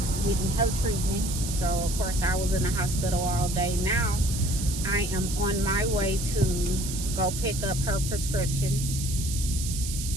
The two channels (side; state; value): right; noise; hiss, 7 dB below the sound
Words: getting her treatment. So of course I was in the hospital all day. Now I am on my way to go pick up her prescriptions.